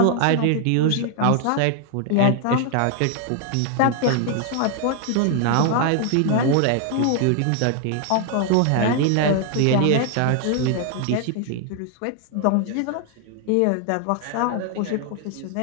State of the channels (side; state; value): both; different; correlation 0.00